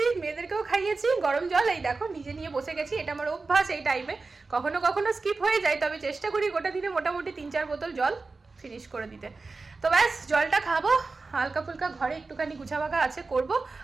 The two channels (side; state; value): left; quieter; 3.9 dB